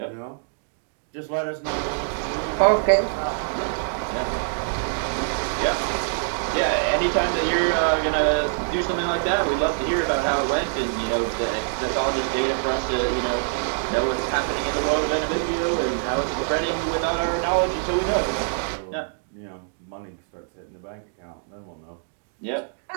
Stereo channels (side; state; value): left; silent; digital silence